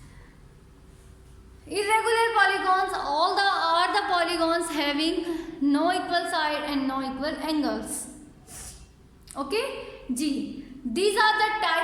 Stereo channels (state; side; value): identical; both; correlation 1.00